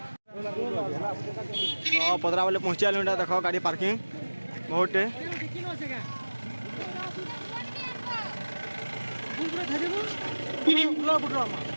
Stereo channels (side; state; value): both; inverted; correlation -1.00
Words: पदरा वाले पहुँचे आलू देख गाड़ी पार्किंग बहुत